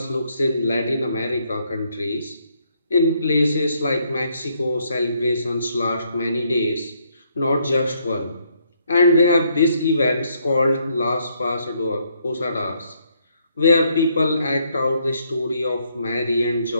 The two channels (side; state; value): both; inverted; correlation -0.72